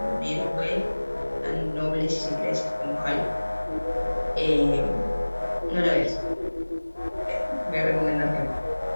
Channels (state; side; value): inverted; both; correlation -1.00